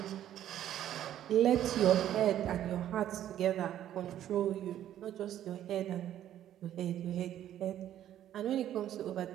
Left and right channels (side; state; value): left; quieter; 11.6 dB